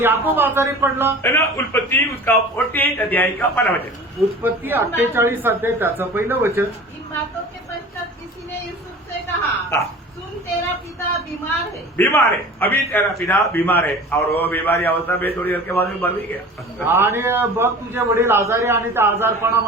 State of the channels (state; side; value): normal; both; correlation 0.40